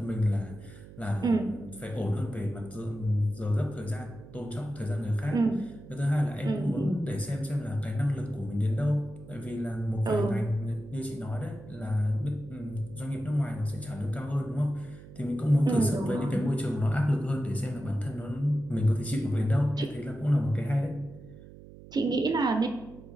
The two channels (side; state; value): right; noise; hum, 18 dB below the sound